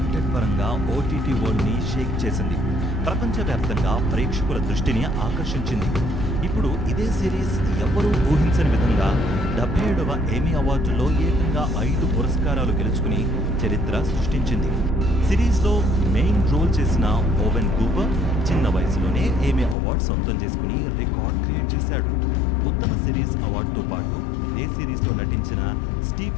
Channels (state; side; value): drops out; right; at 19.8 s